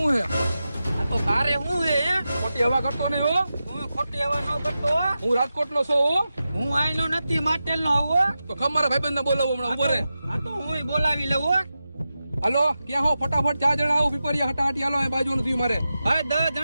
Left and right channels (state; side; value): inverted; both; correlation -0.92